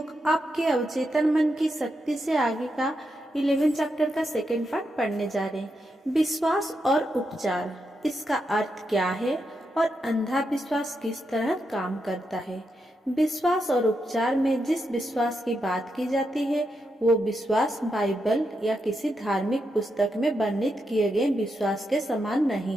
आपके अवचेतन मन की शक्ति से आगे का 11 चैप्टर का सेकेंड पार्ट पढ़ने जा रहे हैं। विश्वास और उपचार, इसका अर्थ क्या है और अंधा विश्वास किस तरह काम करता है। विश्वास और उपचार में जिस विश्वास की बात की जाती है वो विश्वास बाइबल या किसी धार्मिक पुस्तक में वर्णित किए गए विश्वास के समान नहीं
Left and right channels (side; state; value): both; normal; correlation 0.84